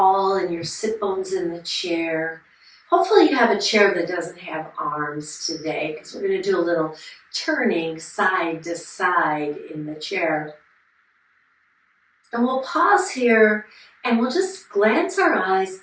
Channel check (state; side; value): identical; both; correlation 1.00